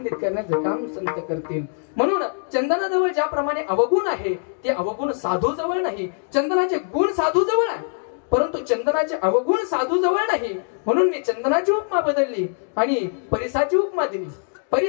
करण्याचं काम संत करतील. म्हणून चंदनाजवळ ज्याप्रमाणे अवगुण आहे ते अवगुण साधू जवळ नाही. चंदनाचे गुण साधू जवळ आहे परंतु चंदनाचे अवगुण साधू जवळ नाही. म्हणून मी चंदनाची उपमा बदलली आणि परिसाची उपमा दिली.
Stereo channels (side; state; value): right; silent; digital silence